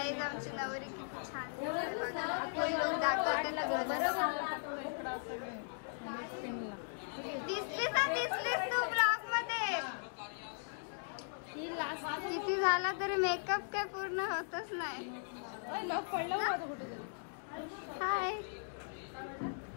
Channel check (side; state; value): right; silent; digital silence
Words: आमची नवरी किती छान दिसते बघा। फुल लुक दाखवते तुम्हाला। दिसलीस तू ब्लॉग मध्ये? किती झाला तरी मेकअप काय पूर्ण होतच नाही। हाय,